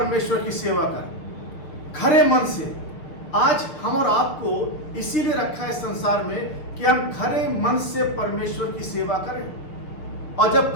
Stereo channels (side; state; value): right; late; 6.7 ms